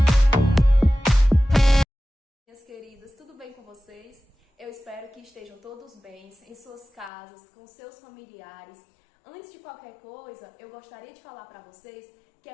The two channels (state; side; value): drops out; right; at 7.1 s